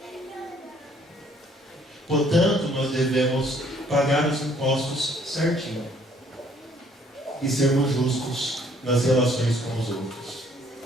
Portanto, nós devemos pagar os impostos certinho e sermos justos nas relações com os outros.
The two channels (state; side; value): normal; both; correlation 0.62